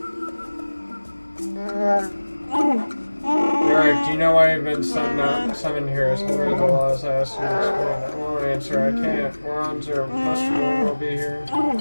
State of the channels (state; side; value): inverted; both; correlation -1.00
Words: Jarak, do you know why you've been summoned here as holder of the laws? I asked you to explain. I won't answer. I can't. Morons or Mustard will be here.